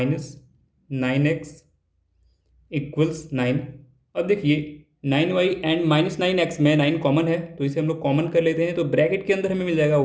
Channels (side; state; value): both; identical; correlation 1.00